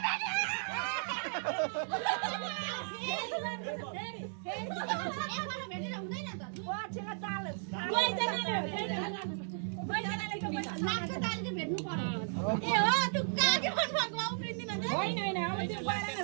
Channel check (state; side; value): silent; left; digital silence